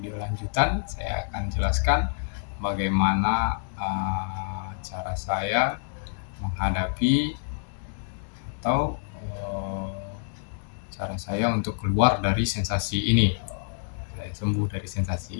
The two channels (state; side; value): silent; right; digital silence